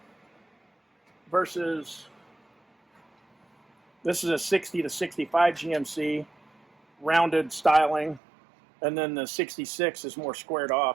versus this is a 60 to 65 GMC rounded styling, and then the 66 is more squared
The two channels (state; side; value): drops out; left; at 8.2 s